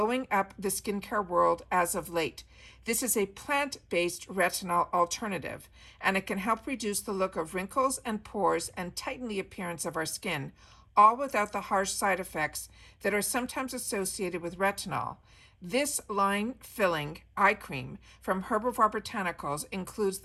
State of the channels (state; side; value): identical; both; correlation 1.00